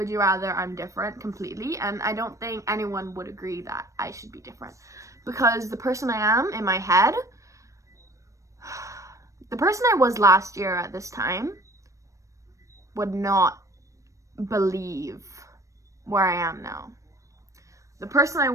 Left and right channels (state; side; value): late; left; 0.15 ms